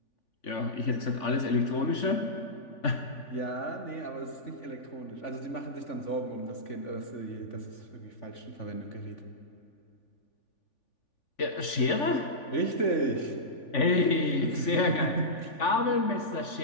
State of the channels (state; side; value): late; right; 3.5 ms